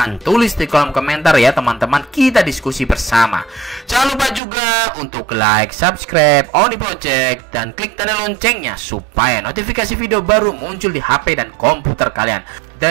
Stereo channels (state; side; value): drops out; left; at 4.4 s